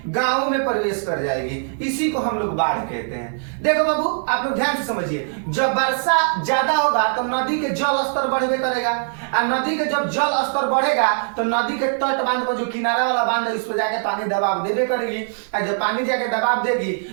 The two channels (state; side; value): silent; left; 65 dB below the other